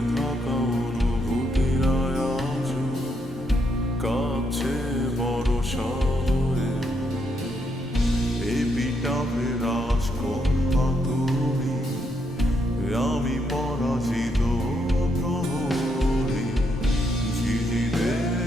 থাকা অনুভূতিরা আজ কাছে বড় শহরে, এপিটাফে রাজকন্যা তুমি, আমি পরাজিত প্রহরী, ঝিঝিদের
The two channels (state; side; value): normal; both; correlation 0.77